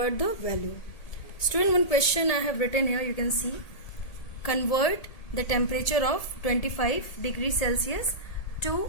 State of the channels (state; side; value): late; right; 1.8 ms